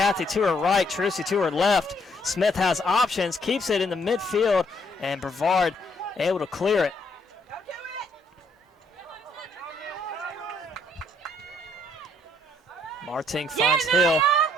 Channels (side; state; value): both; normal; correlation 0.69